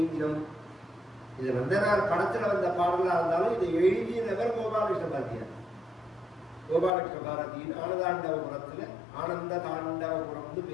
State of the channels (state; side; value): drops out; right; at 6.9 s